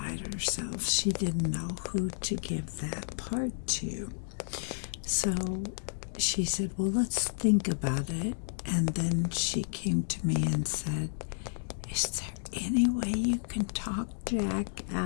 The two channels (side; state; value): right; silent; digital silence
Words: herself. She didn't know who to give that part to. So she said, well, let's think about it. And then she came to me and said, is there any way you can talk Jack